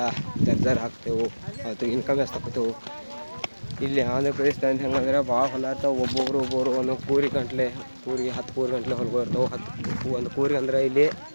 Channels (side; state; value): both; inverted; correlation -1.00